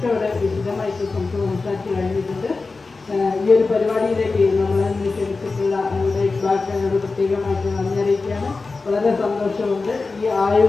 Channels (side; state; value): right; quieter; 3.9 dB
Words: ഇവിടെ വിശദമായിട്ട് സംസാരിച്ച് കഴിഞ്ഞിട്ടുണ്ട്. ഈ ഒരു പരിപാടിയിലേക്ക് നമ്മളെ ക്ഷണിച്ചിട്ടുള്ള നമ്മുടെ ഇക്ബാലിനോട് പ്രത്യേകമായിട്ട് നന്ദി അറിയിക്കുകയാണ്. വളരെ സന്തോഷമുണ്ട്. ഈ